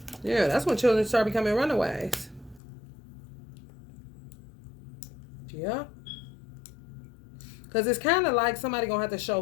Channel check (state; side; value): drops out; right; at 2.6 s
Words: Yeah, that's when children start becoming runaways. Yeah. Because it's kind of like somebody going to have to